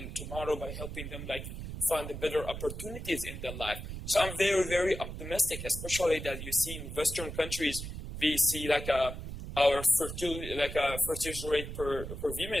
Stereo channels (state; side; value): noise; right; rumble, 8 dB below the sound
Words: tomorrow by helping them like find the better opportunities in their life. So I'm very, very optimistic, especially that you see in Western countries, we see like our fertility rate per